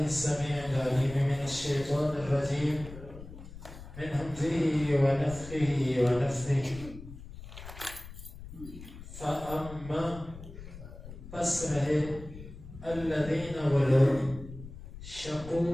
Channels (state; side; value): noise; left; rumble, 14 dB below the sound